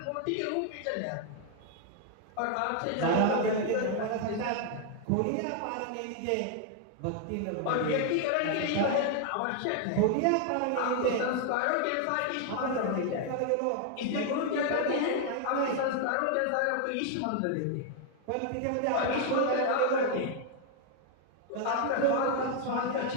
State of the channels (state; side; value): different; both; correlation 0.00